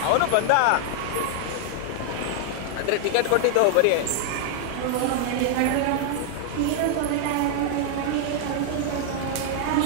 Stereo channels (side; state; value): both; different; correlation 0.00